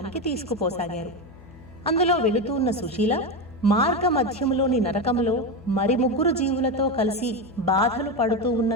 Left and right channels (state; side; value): noise; left; hum, 21 dB below the sound